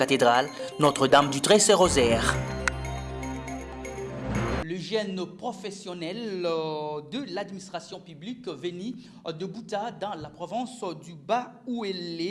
Notre-Dame du Trésor-Rosaire. Le jeune professionnel de l'administration publique venu de Bouta dans la province du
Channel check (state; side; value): identical; both; correlation 1.00